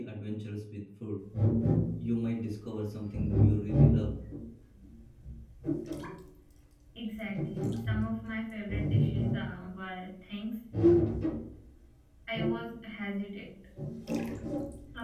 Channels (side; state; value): both; identical; correlation 1.00